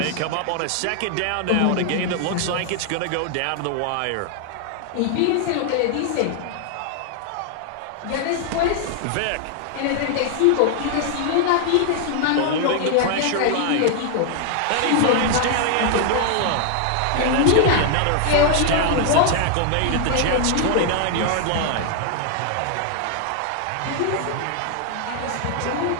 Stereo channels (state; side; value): different; both; correlation 0.00